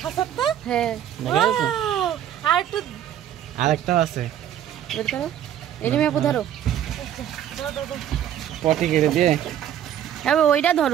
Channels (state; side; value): quieter; left; 10.5 dB